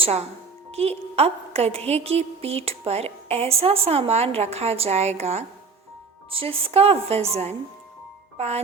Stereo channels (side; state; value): left; quieter; 4.7 dB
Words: कि अब गधे की पीठ पर ऐसा सामान रखा जाएगा जिसका वज़न